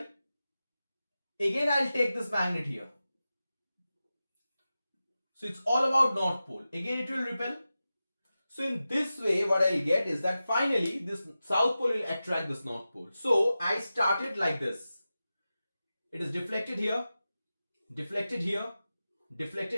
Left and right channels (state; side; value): inverted; both; correlation -0.94